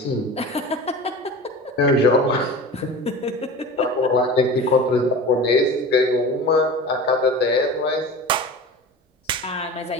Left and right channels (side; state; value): both; normal; correlation 0.34